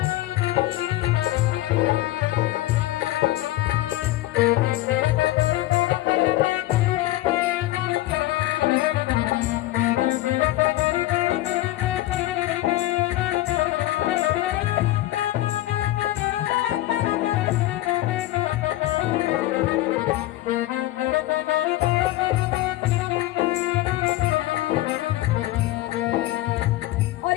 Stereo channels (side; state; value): right; quieter; 16.4 dB